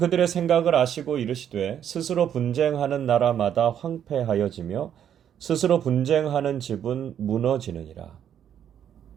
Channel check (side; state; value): left; quieter; 9.4 dB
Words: 생각을 아시고 이르시되 스스로 분쟁하는 나라마다 황폐하여지며 스스로 분쟁하는 집은 무너지느니라.